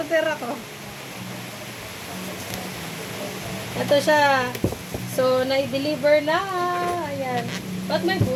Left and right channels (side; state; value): both; identical; correlation 1.00